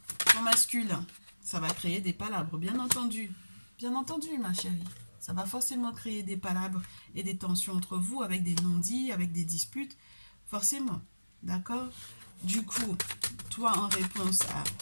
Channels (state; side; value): inverted; both; correlation -1.00